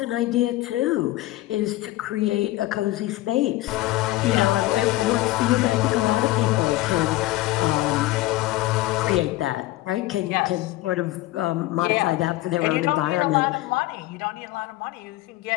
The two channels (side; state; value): right; quieter; 17.4 dB